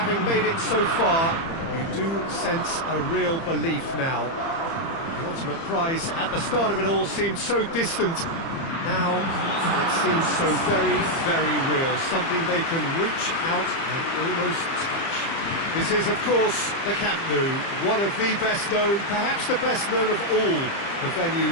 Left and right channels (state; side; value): late; right; 30 ms